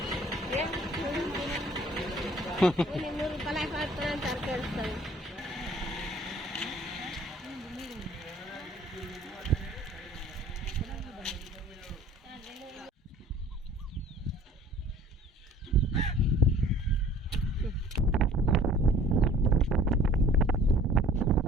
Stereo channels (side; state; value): both; normal; correlation 0.52